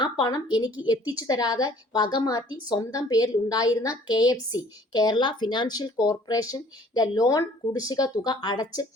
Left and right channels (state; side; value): normal; both; correlation 0.55